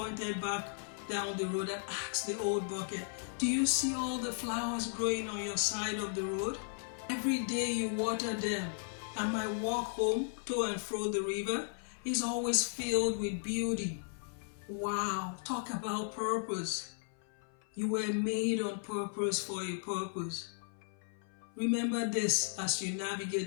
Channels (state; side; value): silent; right; 54 dB below the other